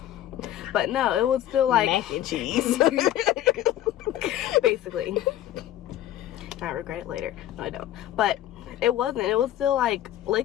But no, it was still like mac and cheese. basically. I regret it later. No, I don't. But it wasn't. It was still like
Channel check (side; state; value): right; quieter; 12.7 dB